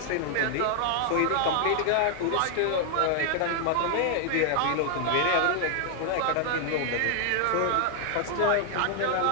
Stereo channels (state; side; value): different; both; correlation 0.00